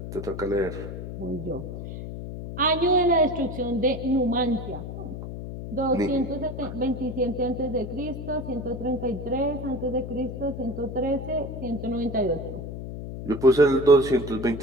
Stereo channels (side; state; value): left; noise; hum, 8 dB below the sound